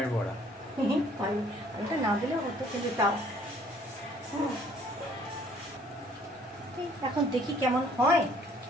বড়া। আলুটা না দিলেও হতো, কিন্তু তাও এখন দেখি কেমন হয়।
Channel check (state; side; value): normal; both; correlation 0.59